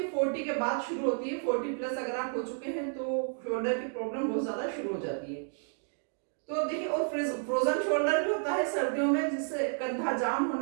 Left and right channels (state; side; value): silent; left; 57 dB below the other